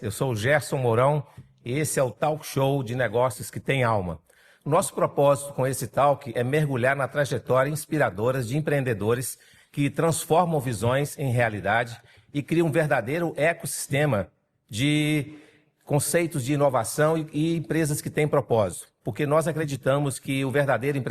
Eu sou o Gerson Mourão e esse é o Talk Show de Negócios que tem alma. O nosso propósito com esse talk é mergulhar na trajetória inspiradora de empreendedores que transformam visões em realidade e criam um verdadeiro ecossistema de conceitos de inovação e empresas que têm propósito. Porque nós acreditamos que o verdadeiro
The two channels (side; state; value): both; identical; correlation 1.00